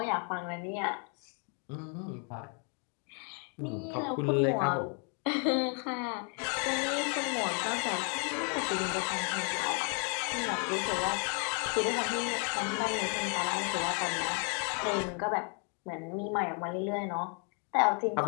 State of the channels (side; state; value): right; quieter; 39.2 dB